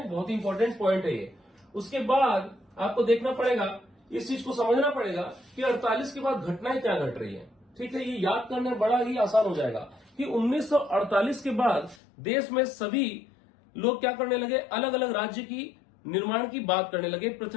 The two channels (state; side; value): drops out; right; at 12.0 s